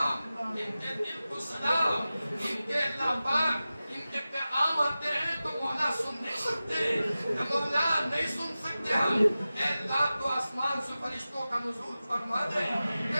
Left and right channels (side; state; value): both; inverted; correlation -0.95